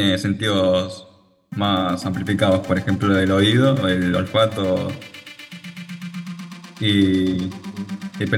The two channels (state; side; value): identical; both; correlation 1.00